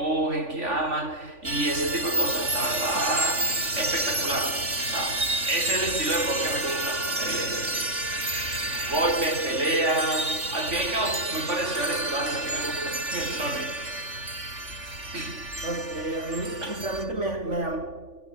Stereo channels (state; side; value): late; left; 3.5 ms